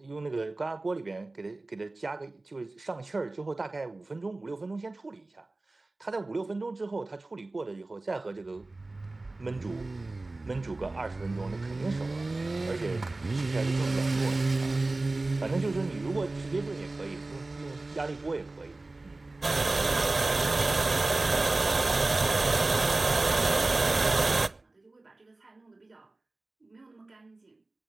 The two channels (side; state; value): left; quieter; 3.1 dB